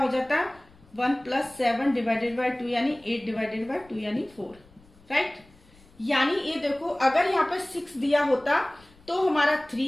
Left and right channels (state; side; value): noise; left; rumble, 27 dB below the sound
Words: जाता 1 प्लस 7 डिवाइडेड बाय 2, यानी 8 डिवाइडेड बाय 2 यानी 4, राइट। यानी ये देखो अगर यहाँ पे 6 दिया होता तो हमारा